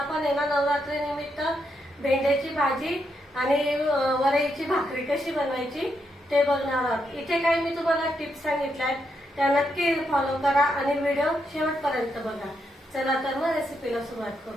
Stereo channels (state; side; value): normal; both; correlation 0.81